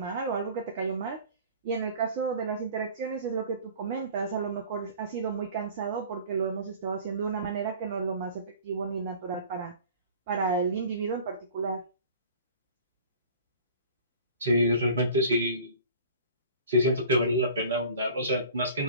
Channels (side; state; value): both; inverted; correlation -0.45